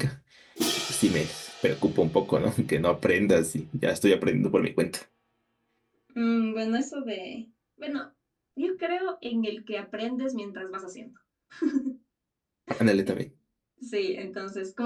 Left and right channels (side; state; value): both; identical; correlation 1.00